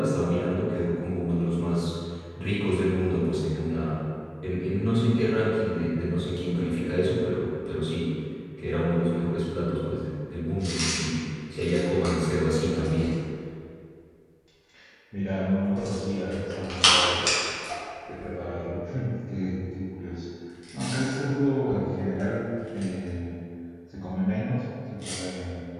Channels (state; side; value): identical; both; correlation 1.00